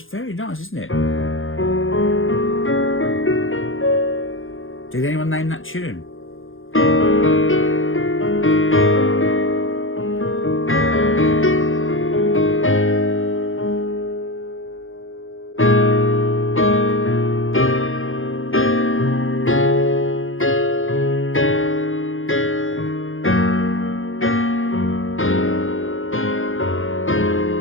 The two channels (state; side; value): late; right; 0.59 ms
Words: very nice, isn't it? Did anyone name that tune?